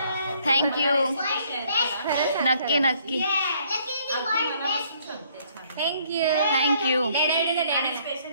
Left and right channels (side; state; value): both; inverted; correlation -0.64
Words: थँक्यू. नक्की थँक्यू. थँक्यू.